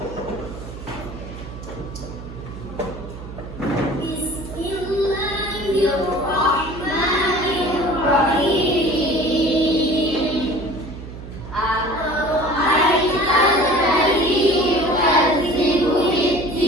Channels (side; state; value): right; noise; hum, 12 dB below the sound